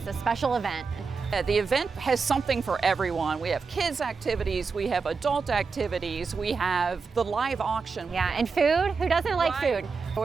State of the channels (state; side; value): quieter; left; 5.0 dB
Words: a special event. The event has something for everyone. We have kids activities, we have adult activities, we have the live auction. Yeah, and food. Who doesn't like food?